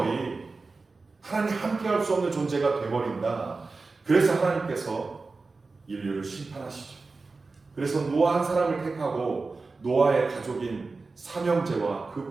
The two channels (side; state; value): left; quieter; 3.9 dB